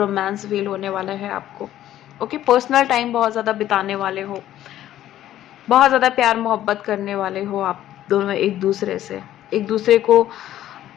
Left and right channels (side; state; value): right; quieter; 12.7 dB